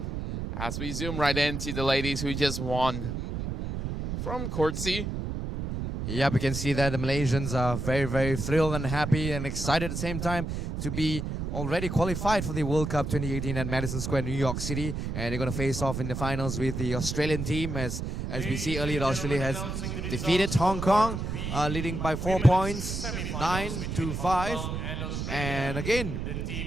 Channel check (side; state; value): right; noise; rumble, 4 dB below the sound